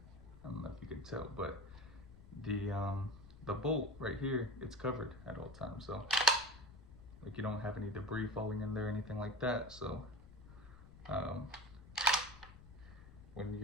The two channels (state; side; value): noise; left; rumble, 18 dB below the sound